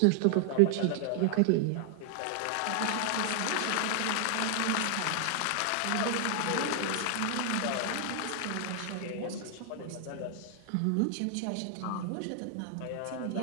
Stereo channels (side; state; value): both; different; correlation 0.00